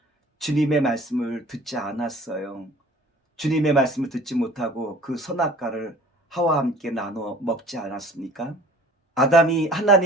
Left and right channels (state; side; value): normal; both; correlation 0.49